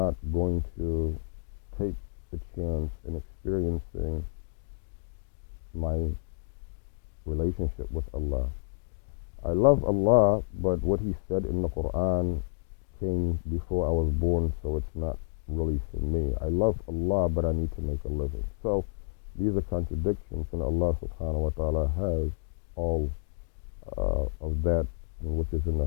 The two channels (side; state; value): right; silent; digital silence